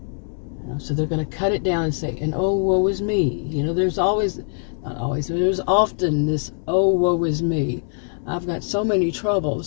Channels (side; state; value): right; silent; digital silence